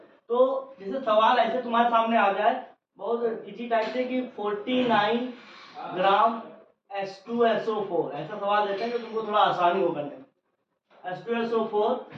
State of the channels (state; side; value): identical; both; correlation 1.00